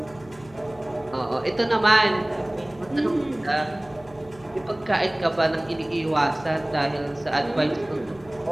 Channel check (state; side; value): noise; left; hum, 24 dB below the sound